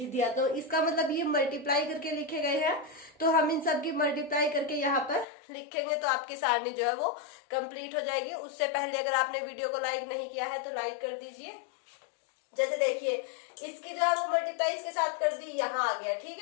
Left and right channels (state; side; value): drops out; right; at 5.2 s